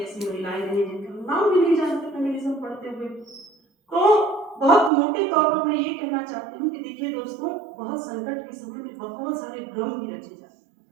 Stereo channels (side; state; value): left; drops out; at 4.9 s